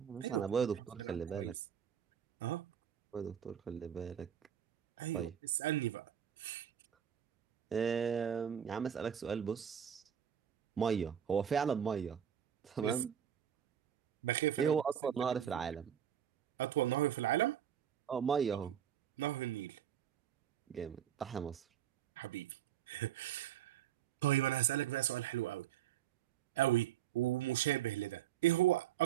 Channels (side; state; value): left; quieter; 9.5 dB